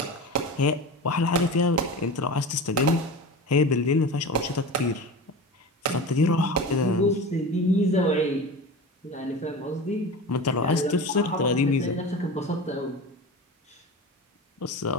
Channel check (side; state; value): both; normal; correlation 0.30